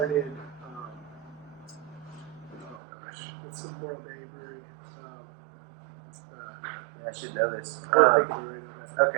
It's the Morro Bay Brewery. I should know this. Morro Bay Brewery.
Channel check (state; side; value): drops out; left; at 2.8 s